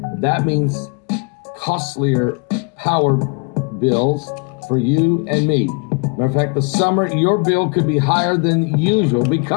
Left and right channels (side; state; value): right; quieter; 34.5 dB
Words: That means costlier power bills for you and me. Matter of fact, the summer, your bill could be higher than usual